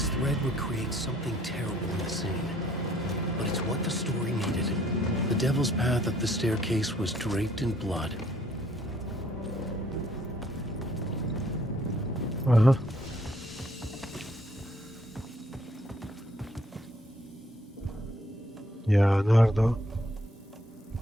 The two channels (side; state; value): both; normal; correlation 0.64